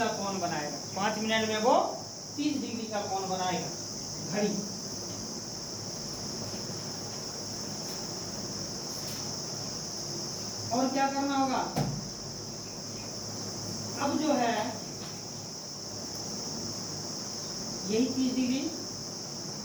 कोण बनाएगा। 5 मिनट में वो 30 डिग्री का कोण बनाएगा घड़ी। और क्या करना होगा, अब जो है यही 30 डिग्री।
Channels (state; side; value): identical; both; correlation 1.00